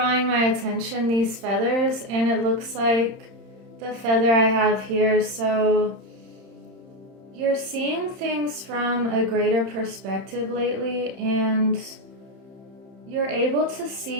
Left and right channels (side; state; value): left; late; 30 ms